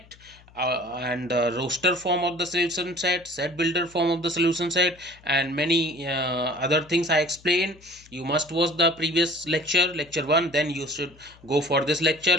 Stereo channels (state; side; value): noise; left; hum, 26 dB below the sound